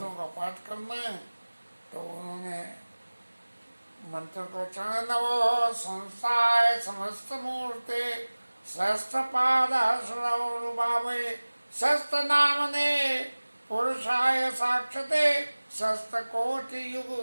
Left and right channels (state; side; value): inverted; both; correlation -1.00